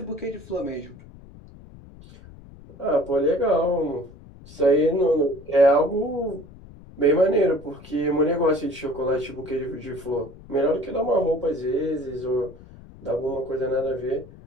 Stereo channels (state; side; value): noise; left; rumble, 20 dB below the sound